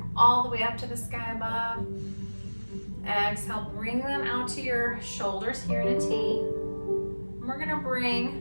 all the way up to the sky above. Exhale, bring them out to your shoulders here in a T. And we're gonna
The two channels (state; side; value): inverted; both; correlation -1.00